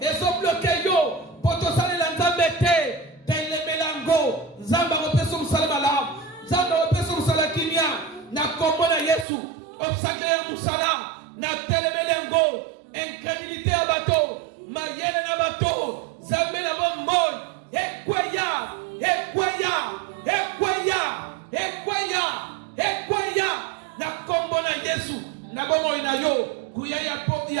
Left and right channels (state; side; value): drops out; left; at 9.2 s